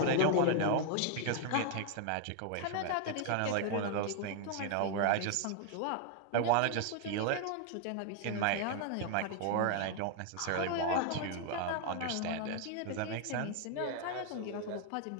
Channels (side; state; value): both; different; correlation 0.01